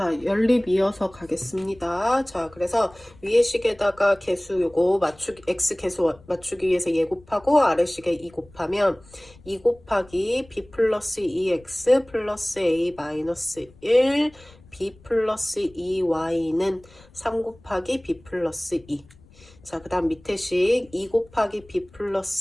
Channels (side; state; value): left; noise; rumble, 26 dB below the sound